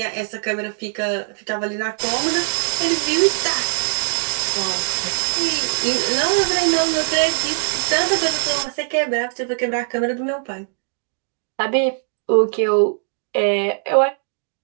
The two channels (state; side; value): silent; left; digital silence